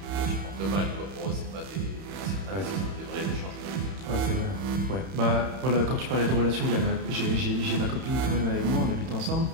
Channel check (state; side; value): late; left; 31 ms